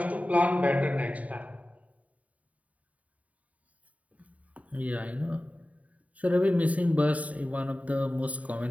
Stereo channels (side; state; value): left; late; 0.069 ms